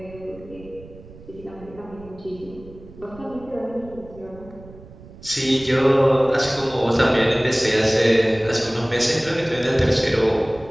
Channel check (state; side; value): noise; right; rumble, 20 dB below the sound